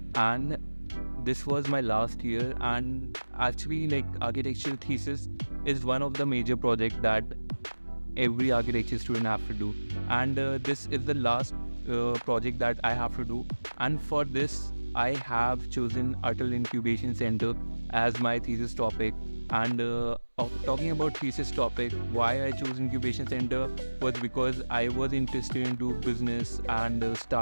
and this was my last year. And actually, like, architecture thesis is one of the major projects that every architecture student have to do, and this is the last project that I have to do. And for this I have chosen Atal Incubation Center as my thesis topic. And talking about thesis topic, why I chose Incubation Center was because I was interested into business and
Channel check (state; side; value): inverted; both; correlation -1.00